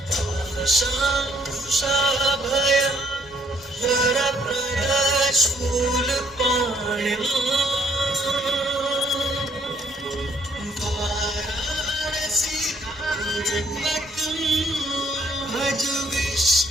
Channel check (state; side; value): normal; both; correlation 0.66